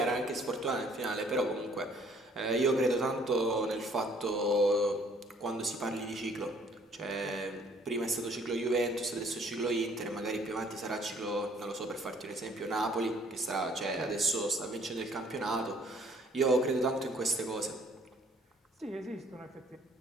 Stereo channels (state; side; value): normal; both; correlation 0.60